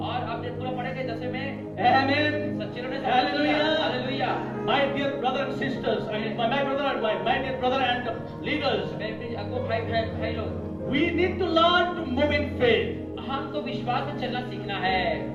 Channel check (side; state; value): both; identical; correlation 1.00